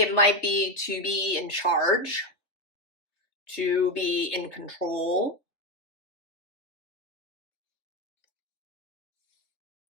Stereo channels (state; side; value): late; right; 3.2 ms